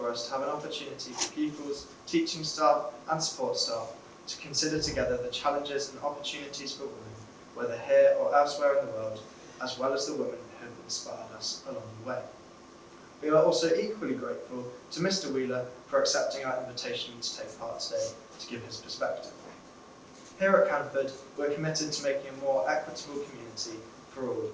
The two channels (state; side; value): identical; both; correlation 1.00